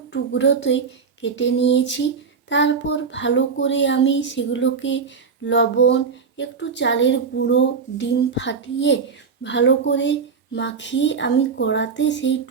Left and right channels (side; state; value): left; quieter; 5.6 dB